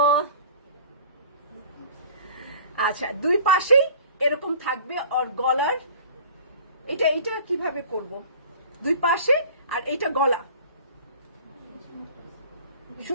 আচ্ছা, দুই পাশেই এরকম থাকবে, আর গলার এটা কিভাবে করব, দুই পাশে, আর এইটা গলা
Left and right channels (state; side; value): inverted; both; correlation -0.47